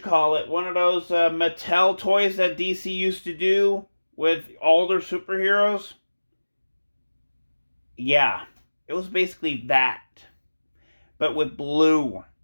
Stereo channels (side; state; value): both; inverted; correlation -1.00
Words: those Mattel toys that DC used to do with all their superheroes. Yeah, it was basically that, but with blue.